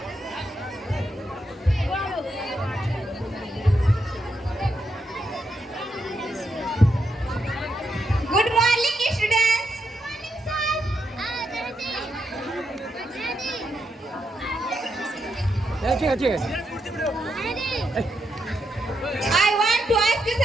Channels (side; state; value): both; normal; correlation 0.82